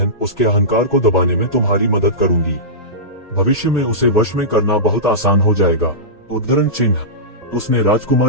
उसके अहंकार को दबाने में तुम्हारी मदद करूंगी। भविष्य में उसे वश में करना बहुत आसान हो जाएगा। उद्धरण चिन्ह। उसने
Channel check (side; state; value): both; normal; correlation -0.18